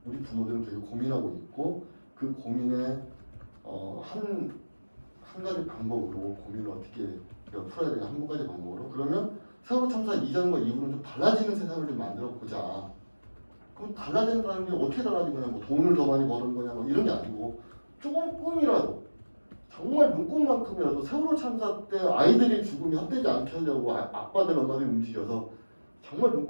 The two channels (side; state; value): both; inverted; correlation -1.00